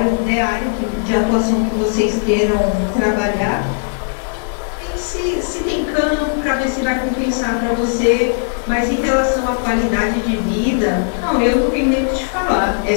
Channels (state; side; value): silent; right; digital silence